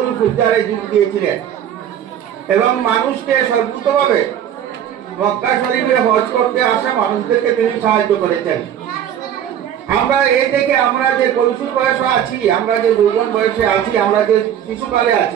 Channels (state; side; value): quieter; left; 9.9 dB